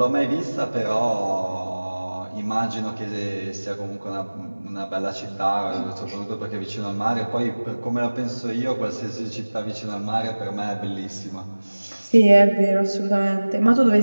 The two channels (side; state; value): both; inverted; correlation -1.00